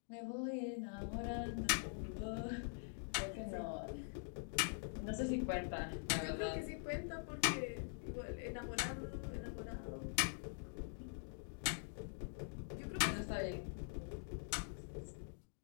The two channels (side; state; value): right; silent; digital silence